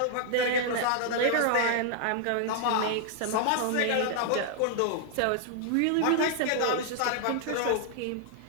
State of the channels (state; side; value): different; both; correlation 0.00